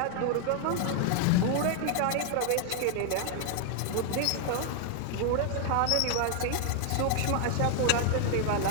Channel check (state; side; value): different; both; correlation 0.00